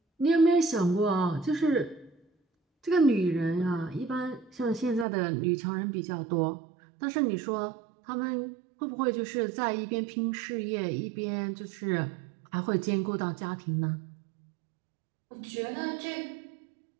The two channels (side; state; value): left; drops out; at 5.1 s